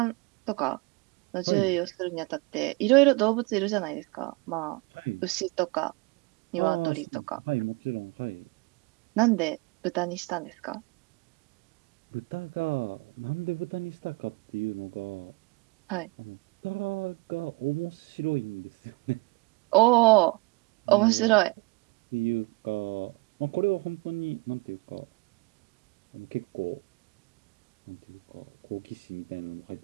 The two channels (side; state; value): left; quieter; 27.3 dB